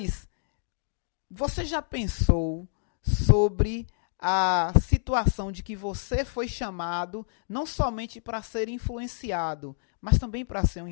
você já pensou sobre a situação de que você foi chamado não somente para ser influenciado, mas também para ser um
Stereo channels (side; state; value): right; silent; digital silence